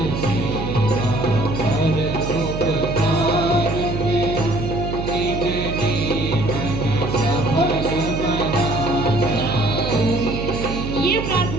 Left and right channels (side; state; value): right; noise; hum, 5 dB below the sound